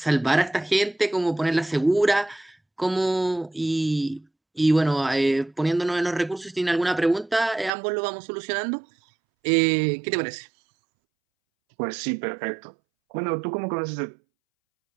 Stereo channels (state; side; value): drops out; left; at 7.7 s